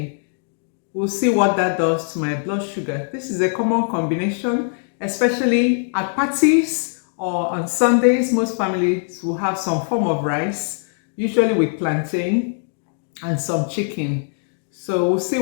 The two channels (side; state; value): right; silent; 62 dB below the other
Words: We'll see what that does to my blood sugar. This is a common combination, especially at parties or on Sundays. Most families will have some form of rice, usually with plantain and some chicken. So we'll see